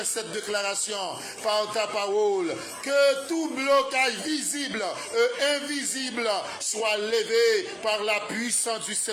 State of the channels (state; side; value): identical; both; correlation 1.00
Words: cette déclaration par ta parole. Que tout blocage visible et invisible soit levé par la puissance du